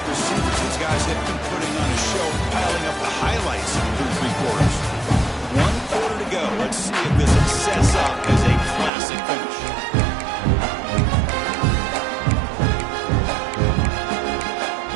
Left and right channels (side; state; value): left; drops out; at 8.9 s